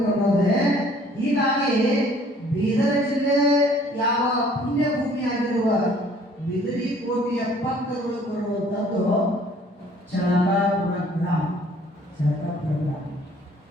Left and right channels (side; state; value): both; normal; correlation 0.56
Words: ಅನ್ನೋದೇ. ಹೀಗಾಗಿ ಬೀದರ ಜಿಲ್ಲೆ ಯಾವ ಪುಣ್ಯ ಭೂಮಿಯಾಗಿರುವ ಬಿದರಿ ಕೋಟೆಯ ಪಕ್ಕದೊಳಗೆ ಬರುವಂಥದ್ದು ಚಳಕಾಪುರ ಗ್ರಾಮ. ಚಳಕಾಪುರ ಗ್ರಾಮ